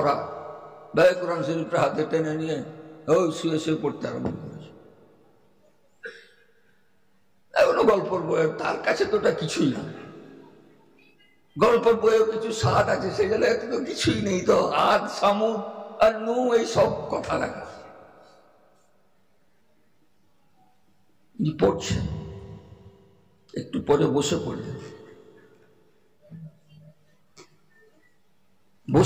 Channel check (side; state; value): both; identical; correlation 1.00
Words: ভাই কোরআন শরীফটা হাতে টেনে নিয়ে ওই শুয়ে শুয়ে পড়তে আরম্ভ করেছে। এখনো গল্পের বইয়ের, তার কাছে তো ওটা কিছুই না। গল্পের বইয়েও কিছু স্বাদ আছে, সেগুলো এত তো কিছুই নেই। তো আদ সামুদ আর নু এই সব কথা লেখা। পড়ছেন, একটু পরে বসে পড়লেন,